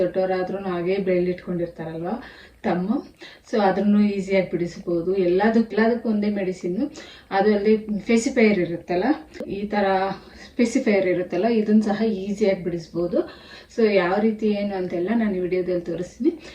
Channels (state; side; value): identical; both; correlation 1.00